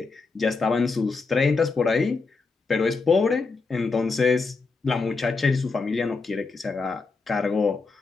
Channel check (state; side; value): quieter; right; 4.2 dB